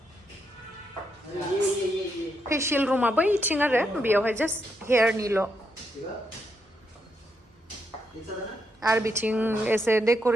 फेशियल रुमा बैथिं आरो बेयावहाय जास्ट हेयारनिल' आरो बिथिं एसे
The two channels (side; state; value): both; normal; correlation 0.80